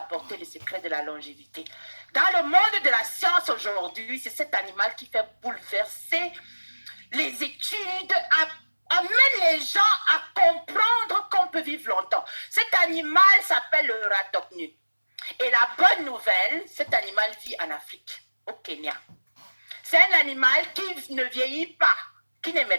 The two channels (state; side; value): inverted; both; correlation -1.00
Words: le secret de la longévité. Dans le monde de la science aujourd'hui, c'est cet animal qui fait bouleverser les études, amène les gens à comprendre qu'on peut vivre longtemps. Cet animal s'appelle le ratopnu. Et la bonne nouvelle, cet animal vit en Afrique, au Kenya. C'est un animal qui ne vieillit pas, qui